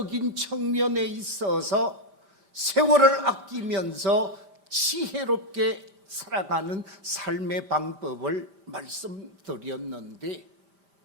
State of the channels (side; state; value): left; late; 5.0 ms